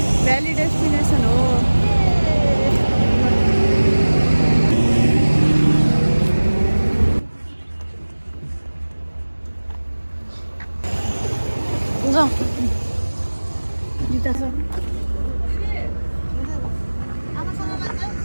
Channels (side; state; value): both; inverted; correlation -1.00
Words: भ्याली डेस्टिनेसन हो।